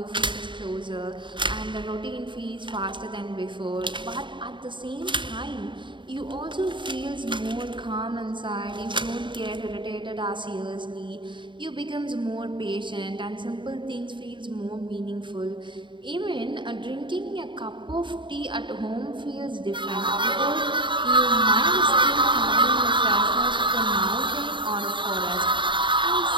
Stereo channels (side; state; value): left; late; 0.23 ms